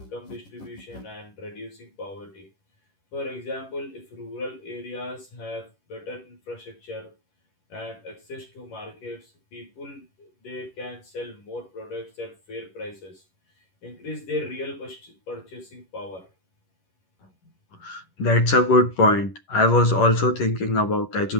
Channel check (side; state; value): right; late; 11 ms